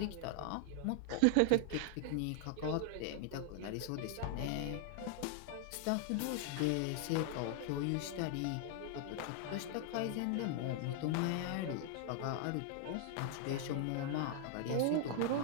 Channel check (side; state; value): both; different; correlation 0.00